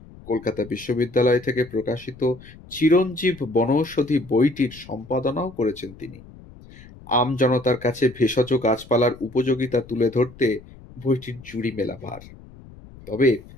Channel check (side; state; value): left; noise; rumble, 20 dB below the sound